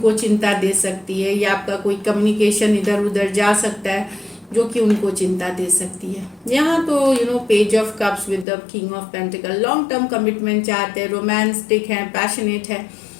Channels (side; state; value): right; drops out; at 8.5 s